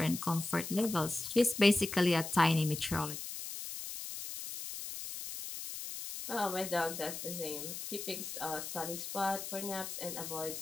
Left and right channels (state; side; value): noise; left; hiss, 7 dB below the sound